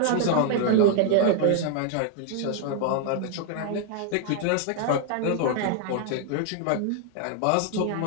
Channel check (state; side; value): different; both; correlation 0.00